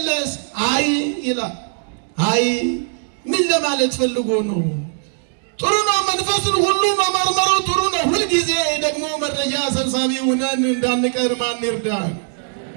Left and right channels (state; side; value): silent; left; 61 dB below the other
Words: አይ ይላል። አይ ምን ለማለት ፈልጎ ነው? ጥሩ ነው፣ መንፈስን ሁሉ መመርመሩ ጥሩ ነው። ሁልጊዜ ደግሞ መረጃ ሰብሳቢ ሆነን እንዳንቀር ማን ይርዳን?